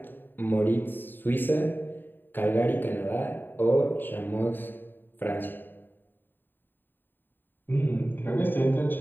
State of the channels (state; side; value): late; right; 0.093 ms